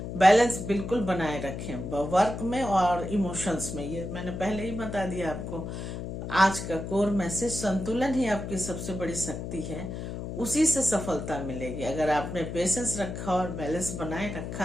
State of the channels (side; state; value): left; noise; hum, 6 dB below the sound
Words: बैलेंस बिल्कुल बनाए रखें वर्क में और इमोशंस में। ये मैंने पहले ही बता दिया आपको। आज का कोर मैसेज, संतुलन ही आपकी सबसे बड़ी शक्ति है, उसी से सफलता मिलेगी। अगर आपने पेशेंस रखा और बैलेंस बनाए